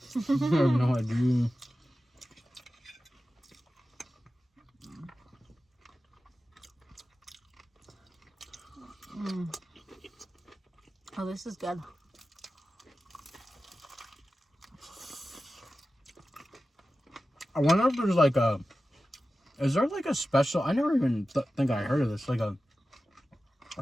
I have no idea. Oh, this is good. I wonder if there's like a... Is there like a special... I never even think I heard of this. Like a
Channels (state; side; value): normal; both; correlation 0.94